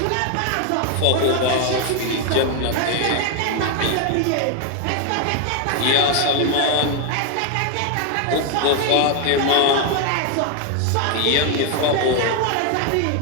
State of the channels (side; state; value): both; different; correlation 0.01